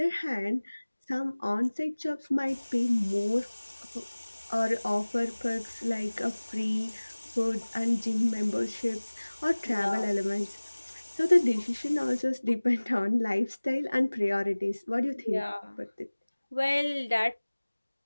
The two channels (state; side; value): inverted; both; correlation -1.00